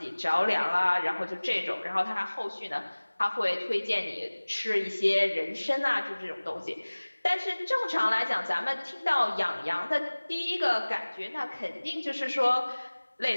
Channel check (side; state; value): both; inverted; correlation -1.00